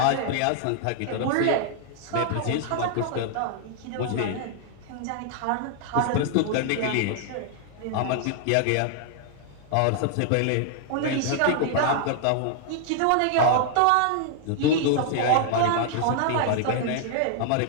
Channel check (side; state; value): both; different; correlation 0.00